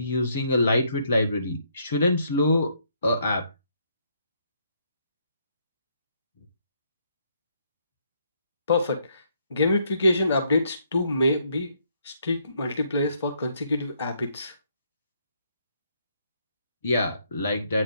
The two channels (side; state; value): both; inverted; correlation -0.72